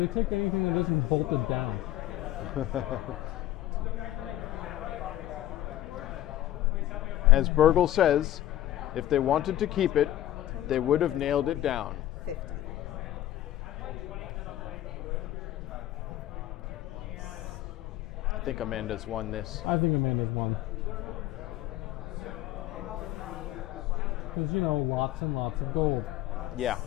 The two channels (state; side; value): quieter; right; 13.8 dB